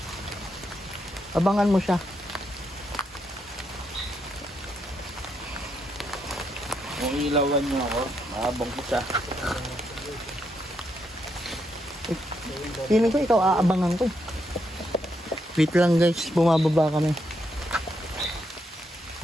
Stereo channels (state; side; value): normal; both; correlation 0.79